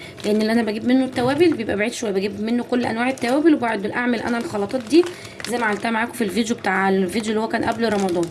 لان اللي انا بجيب منه التوابل بيبقى بعيد شويه، بجيب منه كل انواع التوابل، وبعد اعمل انا الخلطات دي زي ما عملتها معاكم في الفيديو اللي هو كان قبل رمضان.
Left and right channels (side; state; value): both; identical; correlation 1.00